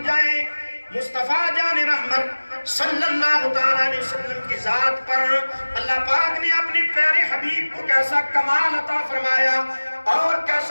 جائیں مصطفیٰ جان رحمت صلی اللہ علیہ وسلم کی ذات پر اللہ پاک نے اپنے پیارے حبیب کو کیسا کمال عطا فرمایا اور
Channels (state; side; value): inverted; both; correlation -1.00